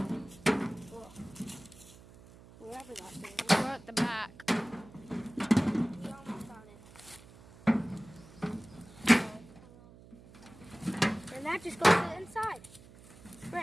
Wherever that thing is. We're at the back. We almost got it. And that just goes to the inside.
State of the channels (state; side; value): noise; right; hum, 21 dB below the sound